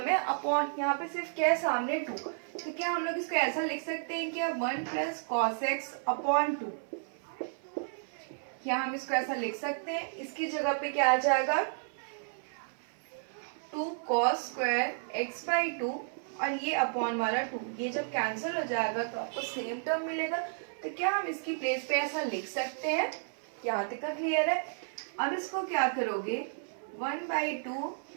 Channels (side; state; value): left; silent; digital silence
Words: है अपॉन यहाँ पे सिर्फ क्या है सामने 2। तो क्या हम लोग इसको ऐसा लिख सकते हैं कि 1 प्लस कॉस एक्स अपॉन 2। क्या हम इसको ऐसा लिख सकते हैं? इसकी जगह पे क्या आ जाएगा 2 cos square x by two और ये अपॉन वाला 2। ये जब कैंसिल हो जाएगा तो आपको सेम टर्म मिलेगा। तो क्या हम इसकी प्लेस पे ऐसा लिख सकते हैं? यहाँ तक का क्लियर है। अब इसको क्या करोगे 1 by two